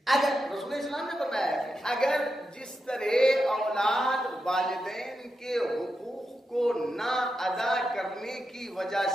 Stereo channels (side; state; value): both; normal; correlation 0.87